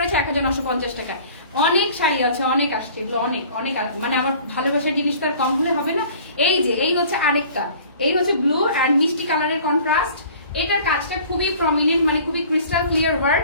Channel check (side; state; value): both; inverted; correlation -0.48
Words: 1950 টাকা। অনেক শাড়ি আছে, অনেক আসছে, এগুলো অনেক অনেক, মানে আমার ভালোবাসার জিনিস তো আর কম হলে হবে না। এই যে এই হচ্ছে আরেকটা, এই হচ্ছে ব্লু অ্যান্ড মিষ্টি কালারের কন্ট্রাস্ট। এটার কাজটা খুবই প্রমিনেন্ট, মানে খুবই ক্রিস্টাল ক্লিয়ার ওয়ার্ক।